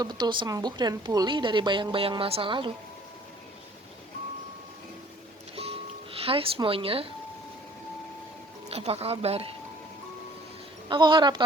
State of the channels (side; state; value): both; normal; correlation 0.55